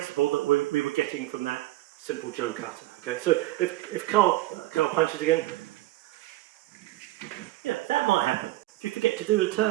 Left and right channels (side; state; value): left; quieter; 17.0 dB